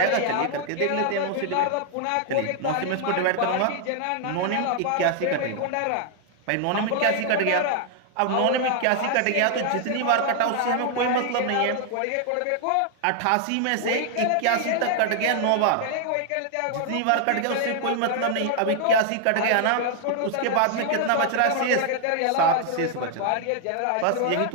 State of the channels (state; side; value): different; both; correlation 0.00